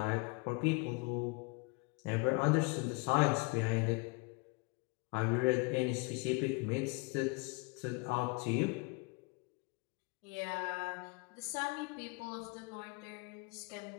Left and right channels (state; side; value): quieter; right; 29.2 dB